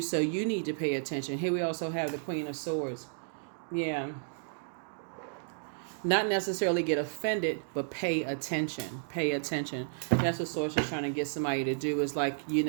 you need to pay attention. Here we also have the Queen of Swords. Yeah. Not necessarily get offended, but pay attention. Pay attention. That's what source is trying to get somebody to do, is like,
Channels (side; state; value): left; silent; digital silence